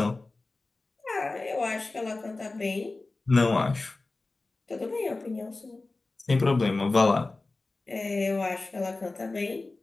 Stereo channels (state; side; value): quieter; right; 3.3 dB